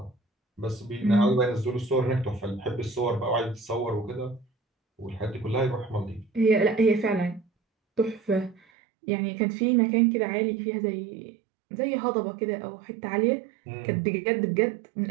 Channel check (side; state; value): left; drops out; at 8.6 s